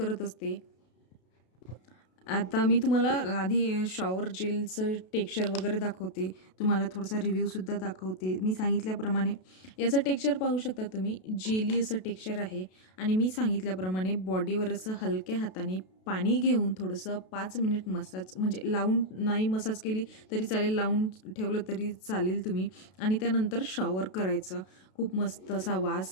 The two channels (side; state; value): right; late; 32 ms